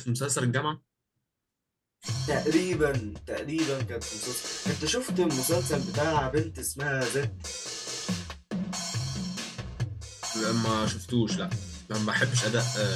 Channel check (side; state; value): both; identical; correlation 1.00